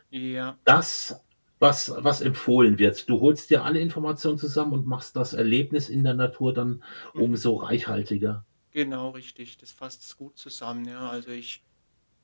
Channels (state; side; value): inverted; both; correlation -1.00